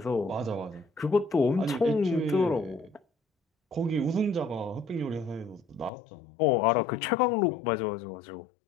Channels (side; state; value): right; drops out; at 5.9 s